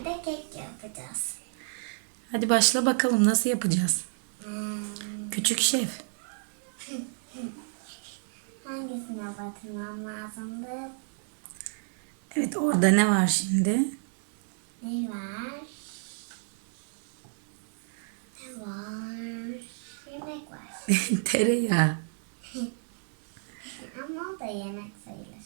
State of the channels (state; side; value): silent; left; digital silence